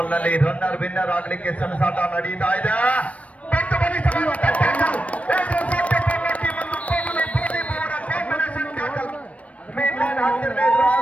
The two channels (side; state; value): right; late; 0.065 ms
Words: ರನ್ನರ್ ವಿನ್ನರ್ ಆಗಲಿಕ್ಕೆ ಸೆಣಸಾಟ ನಡೀತಾ ಇದೆ.